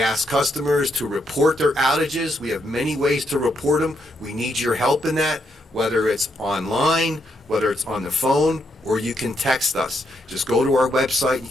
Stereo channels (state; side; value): normal; both; correlation 0.78